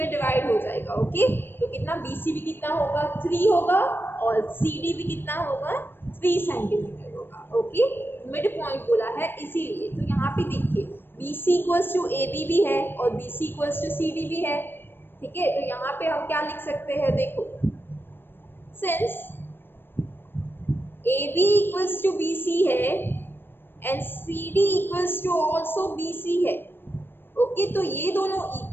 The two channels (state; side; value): late; right; 0.10 ms